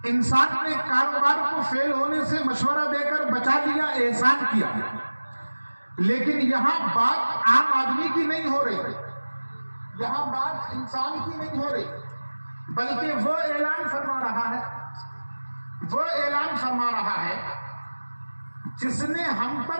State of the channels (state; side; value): inverted; both; correlation -1.00